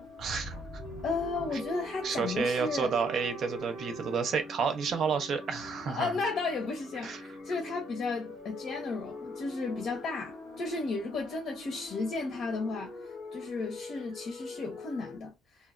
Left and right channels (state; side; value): normal; both; correlation 0.68